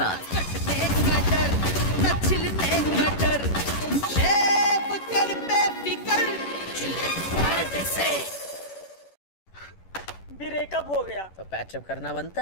ब्रेकअप हो गया तो पैचअप करना बनता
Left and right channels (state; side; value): late; right; 11 ms